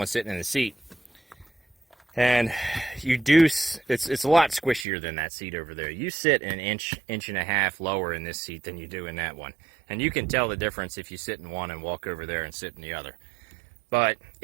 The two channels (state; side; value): drops out; left; at 4.9 s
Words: sitting in the seat. And it's a lot squishier than that seat over there. You sit an inch and a half lower in this seat than you do in that one. And you can tell the difference if you sit in one and walk over there and sit in the other. But